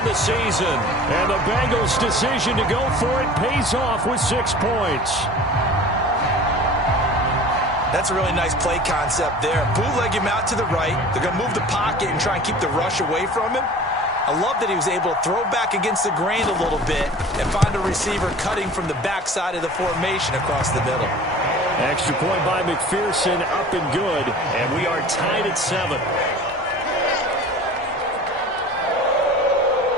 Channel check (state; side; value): normal; both; correlation 0.42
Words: the season. And the Bengals' decision to go for it pays off with 6 points. That's a really nice play concept there. Bootleg him out to the right. They're going to move the pocket and try and keep the rush away from him. I love that he was able to throw back against the grain a little bit and find a receiver cutting from the backside of the formation across the middle. Extra point by McPherson, up and good, and we are tied at 7.